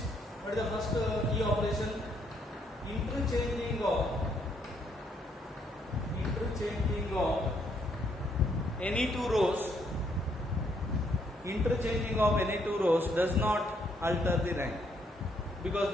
what is the first E operation? Interchanging of any two rows. Interchanging of any two rows does not alter the rank, because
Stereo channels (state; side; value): normal; both; correlation 0.71